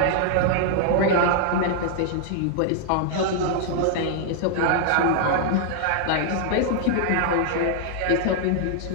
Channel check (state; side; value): different; both; correlation 0.00